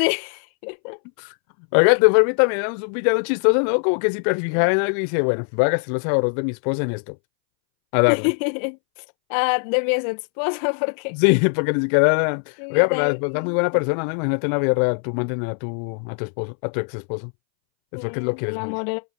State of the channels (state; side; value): silent; right; 64 dB below the other